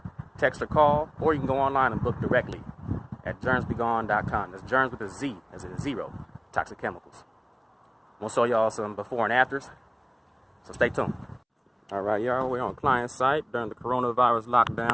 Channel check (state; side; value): identical; both; correlation 1.00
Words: Text or call, or you can go online and book directly at germzbegone.com. That's germs with a Z, as in zero, toxic chemicals. We'll show y'all some before and afters, so stay tuned. All right, y'all, we're on client site during the coronavirus